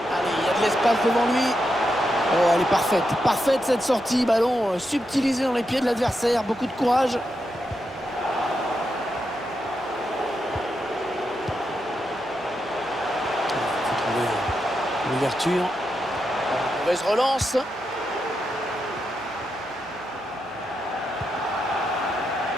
il y a de l'espace devant lui. Oh, elle est parfaite. Parfaite cette sortie. Ballon subtilisé dans les pieds de l'adversaire. Beaucoup de courage. Il faut trouver l'ouverture. Mauvaise relance.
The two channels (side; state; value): right; noise; hum, 25 dB below the sound